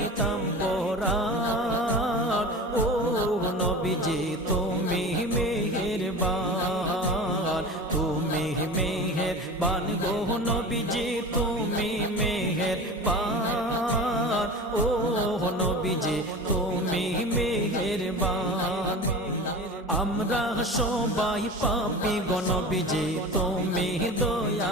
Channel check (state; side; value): normal; both; correlation 0.33